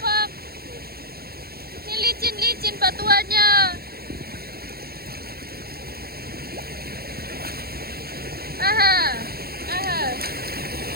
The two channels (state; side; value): late; left; 0.45 ms